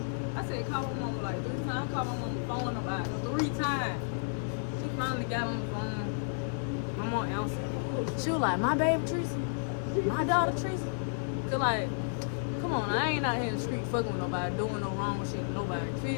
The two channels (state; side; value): silent; right; 56 dB below the other